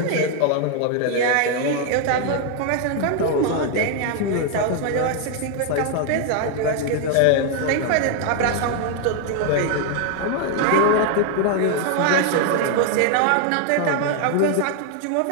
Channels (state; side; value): different; both; correlation 0.01